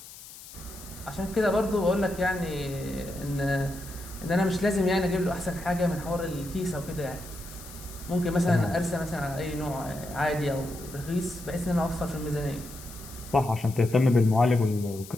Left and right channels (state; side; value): noise; left; hiss, 16 dB below the sound